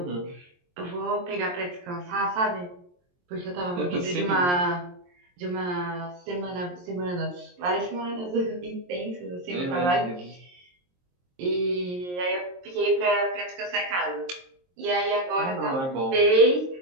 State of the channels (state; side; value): late; left; 22 ms